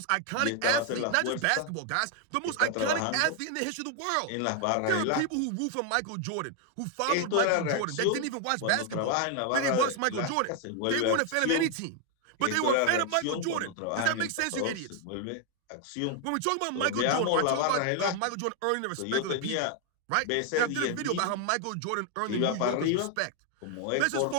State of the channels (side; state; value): both; different; correlation 0.00